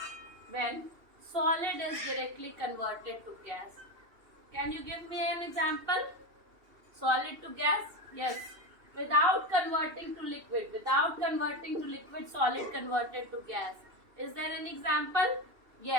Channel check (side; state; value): left; late; 2.7 ms